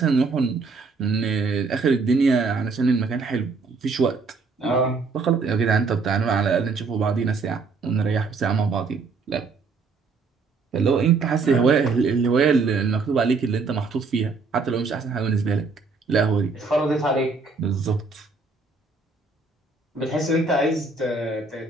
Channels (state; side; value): quieter; left; 4.3 dB